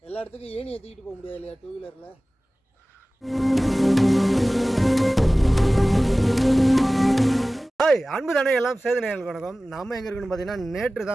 எல்லா இடத்துக்கும் ஏணியை தூக்கிட்டு போக முடியாது இல்லையா டூ வீலரில். ஹாய் அன்பு தானே எல்லாம் சேது நேயர்களுக்கு வணக்கம். நம்ம எங்கே இருக்குன்னு பார்த்தீங்கன்னா நேற்று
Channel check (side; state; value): both; normal; correlation 0.97